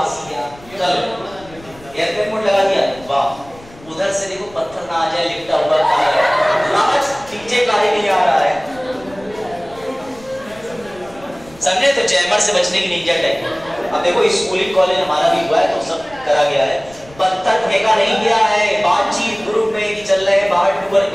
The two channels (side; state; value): left; noise; rumble, 22 dB below the sound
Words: क्या, चलो एयरप्लेन मोड लगा दिया, वाह, उधर से देखो पत्थर ना आ जाए, लिपटा हुआ आज नीचे काहे नहीं आ रहा है, समझे? तो जैमर से बचने की निंजा टेक्निक। अब देखो स्कूलिंग कॉलेज हमारा भी हुआ है तो सब करा गया है, पत्थर फेंका नहीं गया है, बातचीत ग्रुप में कि चल रहे हैं बाहर टूर